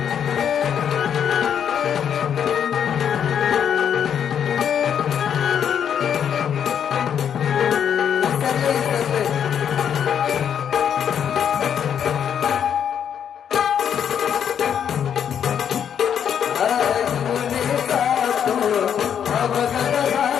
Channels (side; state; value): right; quieter; 8.5 dB